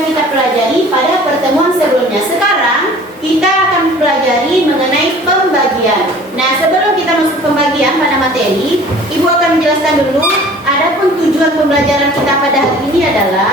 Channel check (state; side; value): normal; both; correlation 0.47